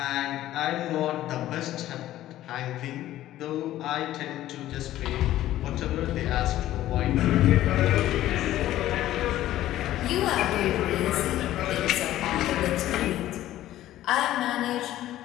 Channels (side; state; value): right; quieter; 13.9 dB